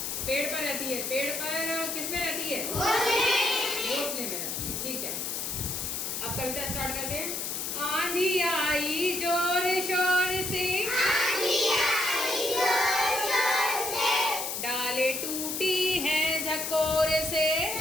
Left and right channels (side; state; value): left; noise; hiss, 3 dB below the sound